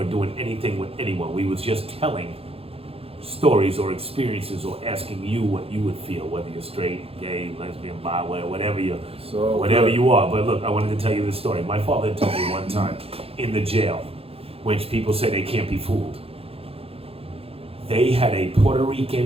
doing anything with anyone. We was just telling stories or experiences or asking you what you would feel, whether you're straight, gay, lesbian, bi, whatever you are. But look, I wanted to tell you this story. My father told me one time in the jail, when people say they can't be fooled, they had a Puerto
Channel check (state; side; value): late; left; 0.28 ms